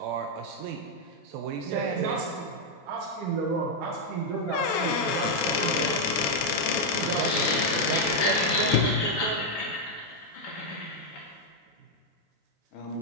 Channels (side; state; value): both; normal; correlation 0.00